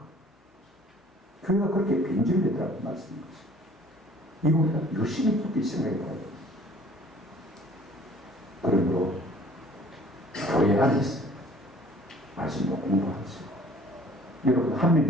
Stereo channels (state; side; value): normal; both; correlation 0.53